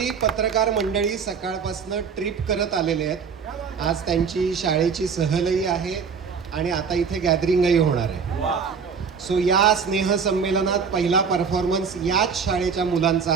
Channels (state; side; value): quieter; left; 6.0 dB